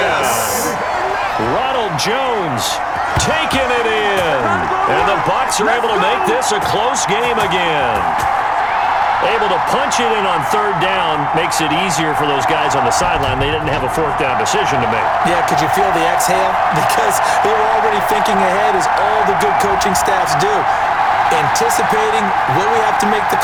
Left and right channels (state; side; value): identical; both; correlation 1.00